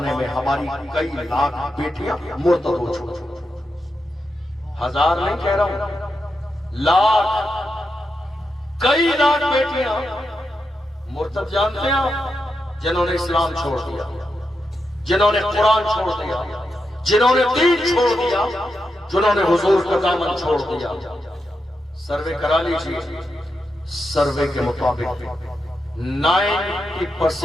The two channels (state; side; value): normal; both; correlation 0.86